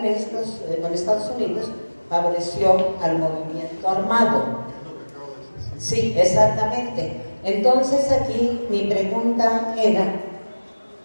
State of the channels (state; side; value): inverted; both; correlation -1.00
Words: Estados Unidos favoreció al movimiento armado. Sí, exactamente. Entonces aquí mi pregunta era,